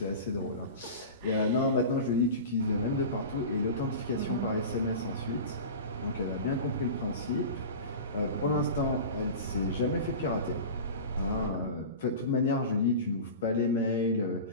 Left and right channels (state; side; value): inverted; both; correlation -0.32